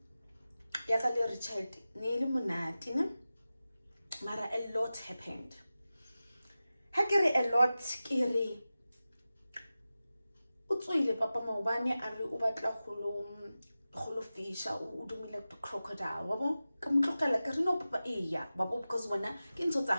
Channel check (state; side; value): inverted; both; correlation -0.95